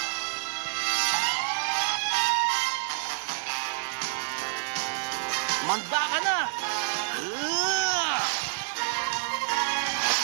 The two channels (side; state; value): left; silent; digital silence